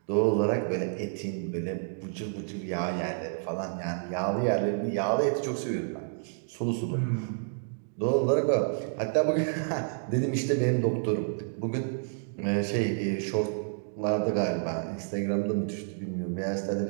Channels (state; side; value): silent; left; digital silence